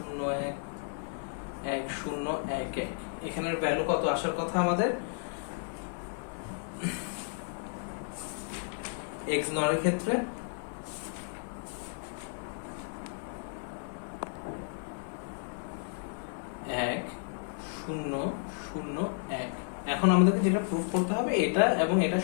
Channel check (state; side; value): silent; right; digital silence